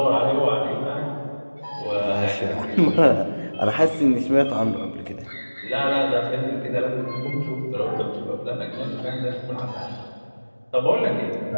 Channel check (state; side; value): inverted; both; correlation -1.00